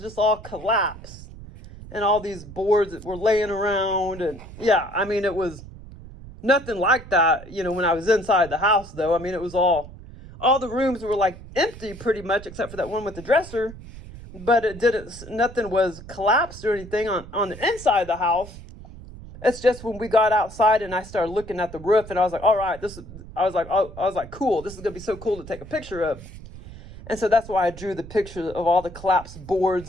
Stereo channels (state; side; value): noise; right; rumble, 15 dB below the sound